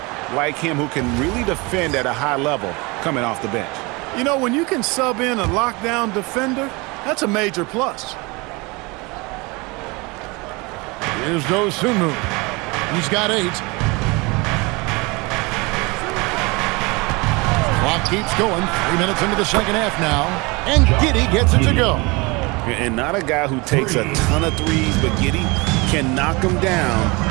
like him who can really defend at a high level coming off the bench. You know, when you can sub in a lockdown defender, that's a major plus. Here's Dosunmu. He's got 8. Clock keeps going. 3 minutes into the second half now. And Giddey gets it to go. And not a guy who takes a ton of threes, but Giddey can knock him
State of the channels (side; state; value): left; quieter; 26.1 dB